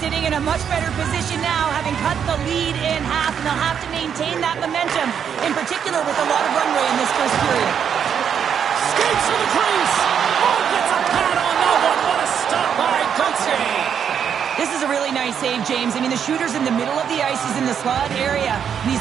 sitting in a much better position now, having cut the lead in half, and they'll have to maintain that momentum, in particular with a lot of runway in this first period. Skates to the crease. Oh, gets a pad on that one. What a stop by Gauthier. This is a really nice save, James. I mean, the shooter's in the middle of the ice. He's in the slot area, and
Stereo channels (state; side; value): quieter; left; 8.0 dB